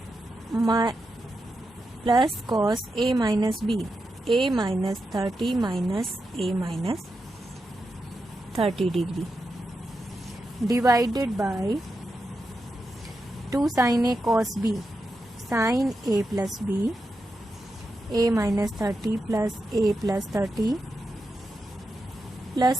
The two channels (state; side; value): normal; both; correlation 0.87